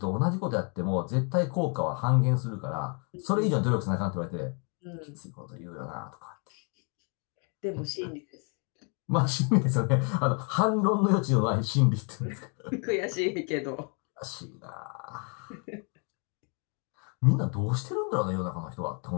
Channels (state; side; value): quieter; right; 38.0 dB